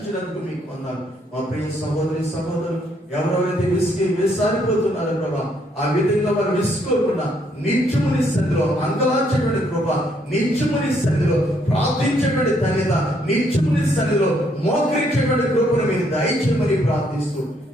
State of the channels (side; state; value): both; normal; correlation 0.70